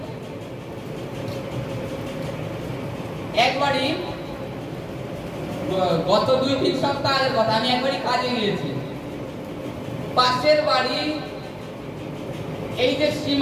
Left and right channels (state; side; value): identical; both; correlation 1.00